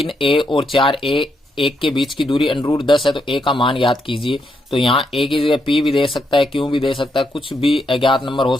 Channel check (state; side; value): normal; both; correlation 0.79